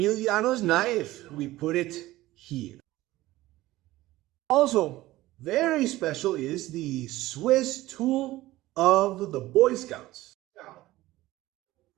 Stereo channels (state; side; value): quieter; left; 17.1 dB